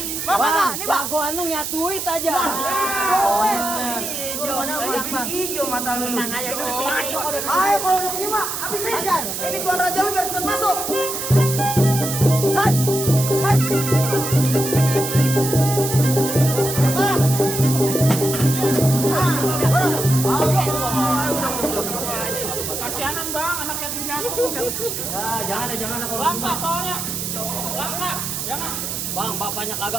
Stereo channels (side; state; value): right; noise; hiss, 4 dB below the sound